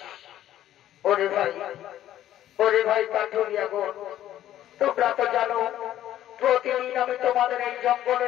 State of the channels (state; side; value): quieter; right; 12.4 dB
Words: ওরে ভাই কাঠুরিয়া গো, তোমরা তো জানো প্রতিদিন আমি তোমাদের এই